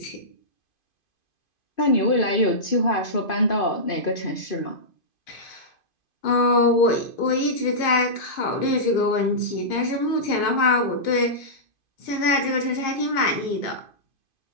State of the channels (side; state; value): right; late; 2.5 ms